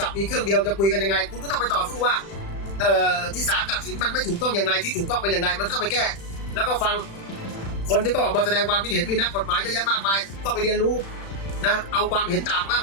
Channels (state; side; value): late; right; 36 ms